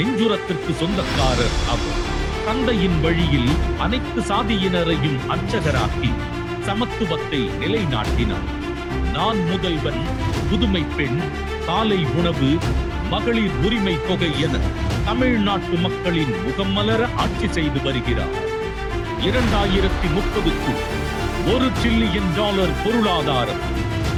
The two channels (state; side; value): identical; both; correlation 1.00